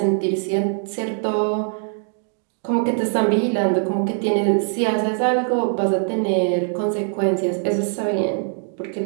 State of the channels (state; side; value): silent; left; 58 dB below the other